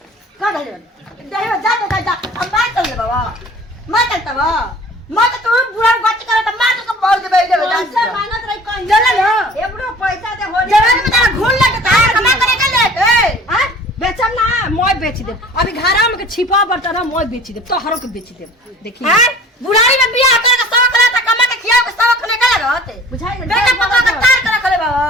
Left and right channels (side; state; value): both; normal; correlation 0.46